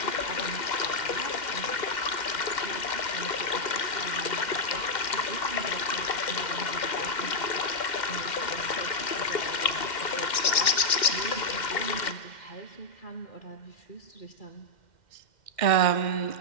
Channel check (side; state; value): right; late; 2.1 ms